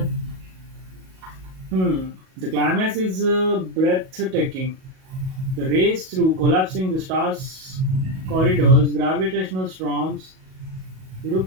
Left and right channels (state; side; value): late; left; 38 ms